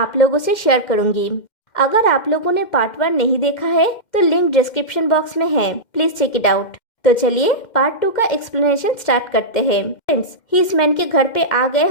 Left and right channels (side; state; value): right; late; 2.1 ms